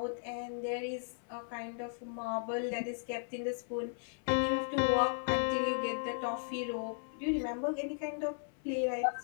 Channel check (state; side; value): silent; right; 54 dB below the other